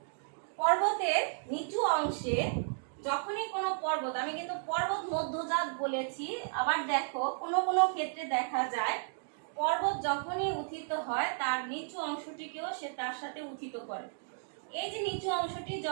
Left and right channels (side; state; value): left; silent; digital silence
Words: পর্বতের নিচু অংশে যখনই কোনো পর্বত, আমি কিন্তু পর্বত মধ্যজাত বলেছি, আবার দেখো কোনো ক্ষেত্রে দেখা যায় পর্বত যখনই উত্থিত হয় তার নিচু অংশটিকেও সে তার সাথে উত্থিত করে। এই যে নিচু অংশটি